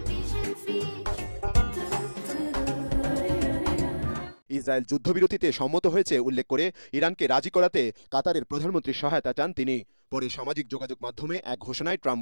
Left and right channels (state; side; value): inverted; both; correlation -1.00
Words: ইসরায়েল যুদ্ধবিরতিতে সম্মত হয়েছে উল্লেখ করে ইরানকে রাজি করাতে কাতারের প্রধানমন্ত্রী সহায়তা চান তিনি। পরে সামাজিক যোগাযোগ মাধ্যমে এক ঘোষণায় ট্রাম্প